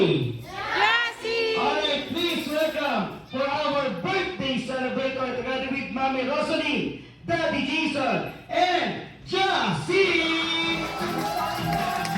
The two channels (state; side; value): identical; both; correlation 1.00